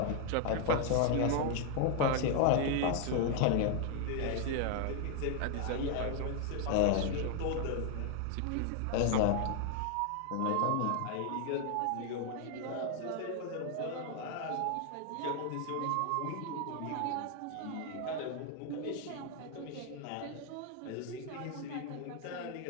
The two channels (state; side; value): different; both; correlation 0.00